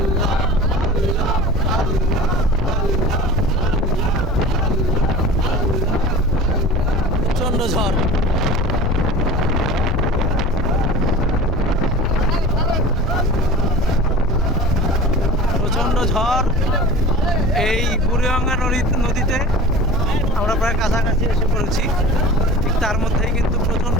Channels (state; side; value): normal; both; correlation 0.38